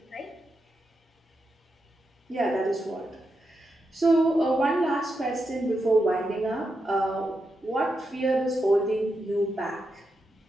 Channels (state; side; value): normal; both; correlation 0.86